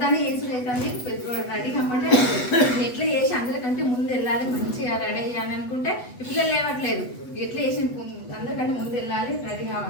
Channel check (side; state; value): right; late; 8.1 ms